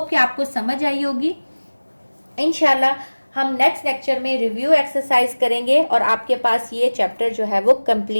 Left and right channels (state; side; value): inverted; both; correlation -1.00